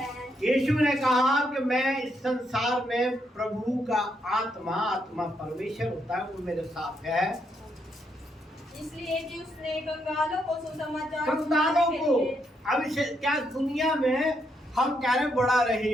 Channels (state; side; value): normal; both; correlation 0.77